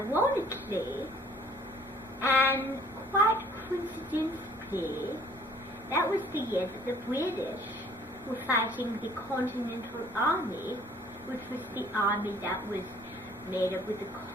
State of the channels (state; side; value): normal; both; correlation 0.56